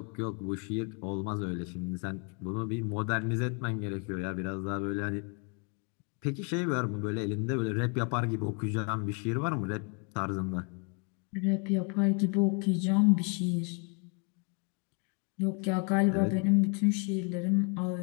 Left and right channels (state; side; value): quieter; right; 36.0 dB